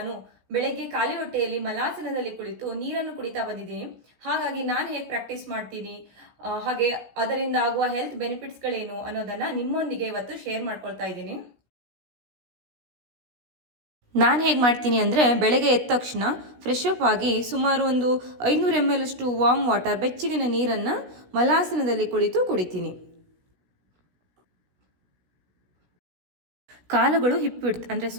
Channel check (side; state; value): left; late; 16 ms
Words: ಬೆಳಗ್ಗೆ ಖಾಲಿ ಹೊಟ್ಟೆಯಲ್ಲಿ ಮಲಾಸನದಲ್ಲಿ ಕುಳಿತು ನೀರನ್ನು ಕುಡಿತಾ ಬಂದಿದ್ದೀನಿ. ಹಾಗಾಗಿ ನಾನು ಹೇಗೆ ಪ್ರಾಕ್ಟೀಸ್ ಮಾಡ್ತೀನಿ, ಹಾಗೆ ಅದರಿಂದ ಆಗುವ ಹೆಲ್ತ್ ಬೆನಿಫಿಟ್ಸ್ಗಳೇನು ಅನ್ನೋದನ್ನ ನಿಮ್ಮೊಂದಿಗೆ ಇವತ್ತು ಶೇರ್ ಮಾಡ್ಕೊಳ್ತಾ ಇದ್ದೀನಿ. ನಾನು ಹೇಗೆ ಮಾಡ್ತೀನಿ ಅಂದರೆ, ಬೆಳಗ್ಗೆ ಎದ್ದ ತಕ್ಷಣ ಫ್ರೆಶ್ ಅಪ್ ಆಗಿ ಸುಮಾರು ಒಂದು 500 ml ಅಷ್ಟು ವಾರ್ಮ್ ವಾಟರ್, ಬೆಚ್ಚಗಿನ ನೀರನ್ನು ಮಲಾಸನದಲ್ಲಿ ಕುಳಿತು ಕುಡಿತೀನಿ. ಕಾಲುಗಳು ಹಿಪ್ ವಿಡ್ತ್ ಅಂದರೆ